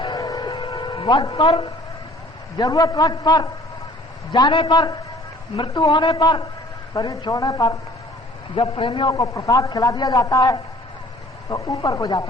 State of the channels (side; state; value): both; normal; correlation 0.52